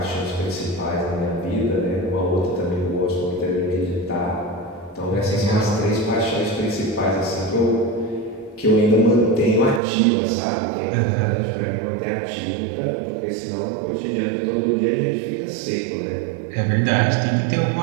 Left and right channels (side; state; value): left; drops out; at 9.8 s